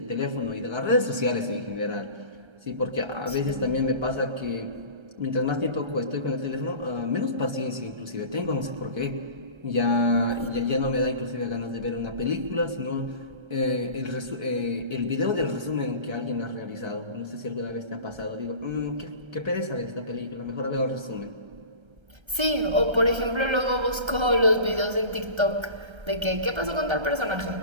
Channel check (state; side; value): late; left; 1.3 ms